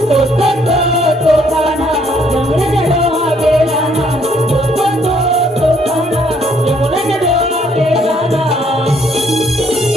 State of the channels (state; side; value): normal; both; correlation 0.66